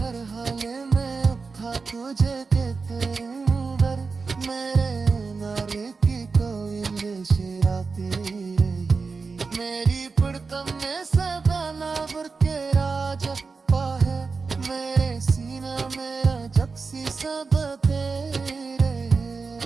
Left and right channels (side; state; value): left; quieter; 4.6 dB